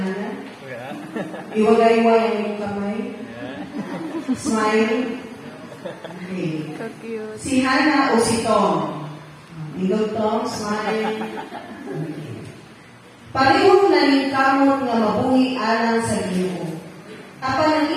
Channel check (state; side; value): identical; both; correlation 1.00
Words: Iwagay-iway ang iyong kamay. Smile. Okay. Si Hannah o si Tom. Tindog Tom, smile. Okay. Parehong naningkamot nga mabungi alang sa Ginoo. Apan ang